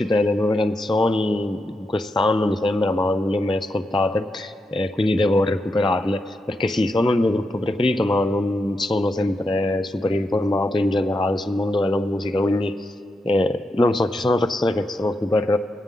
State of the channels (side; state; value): both; normal; correlation 0.85